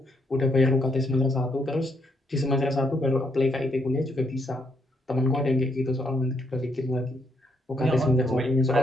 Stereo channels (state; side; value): normal; both; correlation 0.75